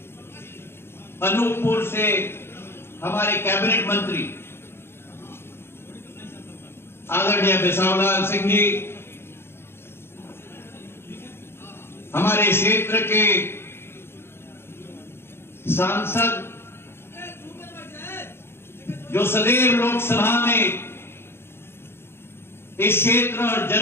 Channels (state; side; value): late; right; 0.11 ms